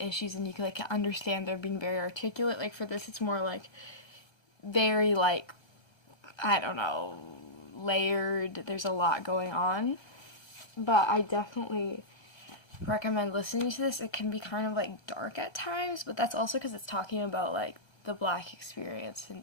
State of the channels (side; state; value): right; late; 1.8 ms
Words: and you can like understand they're being very articulate. Like for this, it's more like very like, I don't know, layered. There's a lot going on, but I definitely recommend listening to this. It can be kind of like dark at times, but that's also because it's talking about like the Black experience